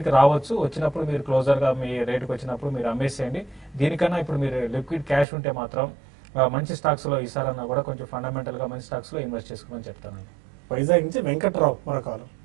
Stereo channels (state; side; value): drops out; left; at 5.2 s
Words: కి రావచ్చు. వచ్చినప్పుడు మీరు క్లోజర్ గా మీ రేటుకి వచ్చినప్పుడు మీరు అమ్మేసేయండి. దీనికన్నా ఇప్పుడు మీరు లిక్విడ్ క్యాష్ ఉంటే మాత్రం మంచి స్టాక్స్ లో ఈసారన్నా కూడా కొంచెం ఫండమెంటల్ గా మంచి స్టాక్స్ లో ఇన్వెస్ట్ చేసుకోమని చెప్తానండి. వైజాగ్ నుంచి వెంకట్రావు మరొకరు.